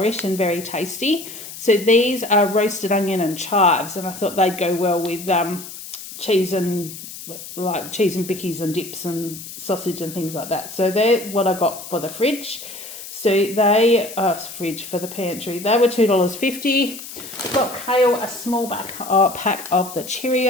and very tasty. So these are roasted onion and chives, and I thought they'd go well with cheese and bickies and dips and sausage and things like that. So they're what I got for the fridge. So they fridge for the pantry. They were $2.50. Got Kale a small pack of the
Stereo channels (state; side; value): noise; left; hiss, 12 dB below the sound